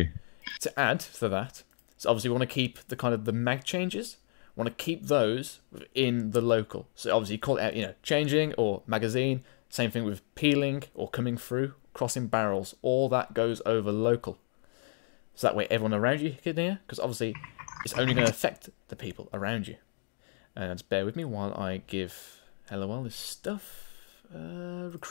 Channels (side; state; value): right; silent; 56 dB below the other